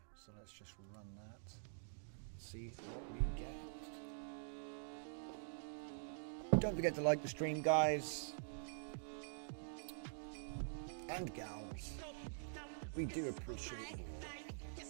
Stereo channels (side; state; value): left; silent; digital silence